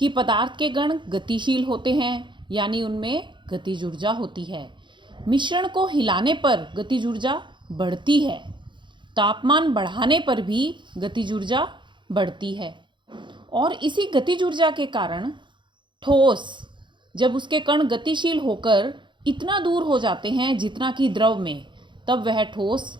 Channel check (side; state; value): left; late; 0.23 ms